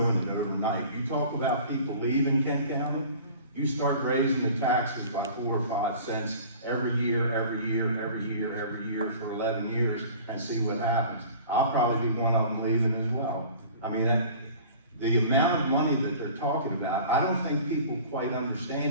it overnight. You talk about people leaving Kent County, you start raising the taxes by 4 or 5 cents every year for 11 years and see what happens. I'll probably be one of them leaving as well. I mean, the amount of money that they're talking about, I don't think people quite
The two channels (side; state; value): both; inverted; correlation -0.44